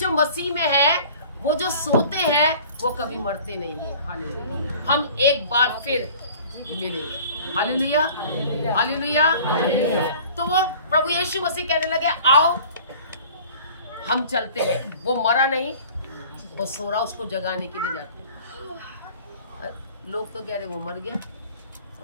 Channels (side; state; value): both; inverted; correlation -0.47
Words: मसीह में है वो जो सोते हैं वो कभी मरते नहीं है। हालेलुया। हम एक बार फिर मिलेंगे। Hallelujah, hallelujah. तो वो प्रभु यीशु मसीह कहने लगे आओ हम चलते हैं। वो मरा नहीं, वो सो रहा, उसको जगाने के लिए जाते हैं। लोग तो कह रहे वो मर गया